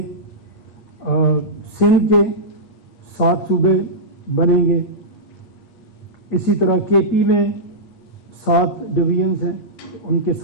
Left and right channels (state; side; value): normal; both; correlation -0.14